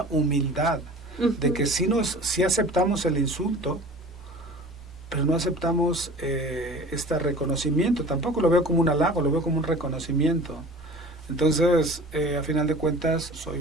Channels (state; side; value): normal; both; correlation 0.41